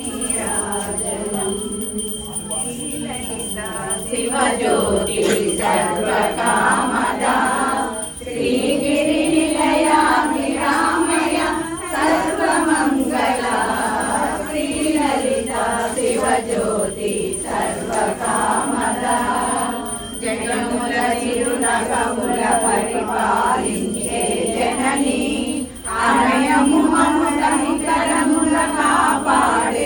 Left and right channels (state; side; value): identical; both; correlation 1.00